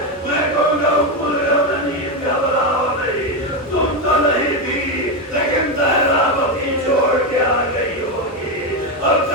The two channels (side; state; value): both; normal; correlation 0.09